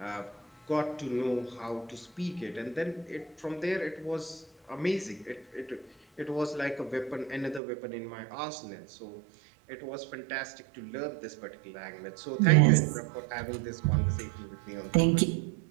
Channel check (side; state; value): left; drops out; at 7.6 s